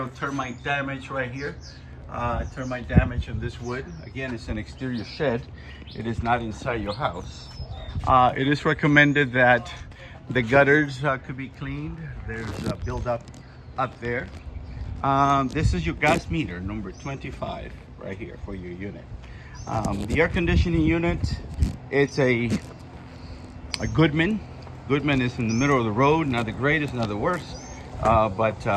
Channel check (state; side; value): identical; both; correlation 1.00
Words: termite damage right here. Termite damage on this wood. Again, it's an exterior shed. It is not inside your house. It is recommended that the gutters could be cleaned. There's a buildup up there. This is your gas meter, number 25, right here for your unit. The air conditioning unit, it's a Goodman. Goodman is in the middle of the road, not the greatest, not the worst.